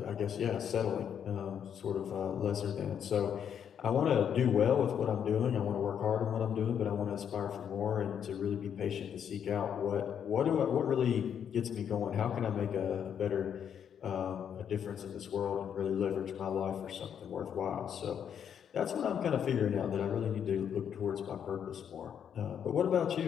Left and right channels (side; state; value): right; quieter; 8.4 dB